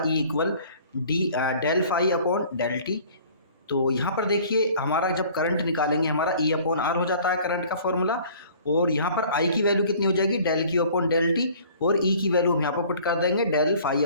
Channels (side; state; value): both; inverted; correlation -0.51